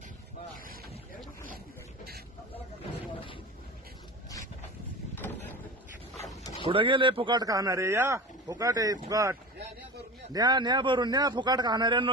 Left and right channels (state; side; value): normal; both; correlation 0.31